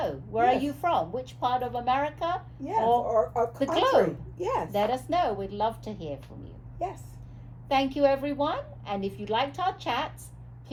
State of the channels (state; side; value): identical; both; correlation 1.00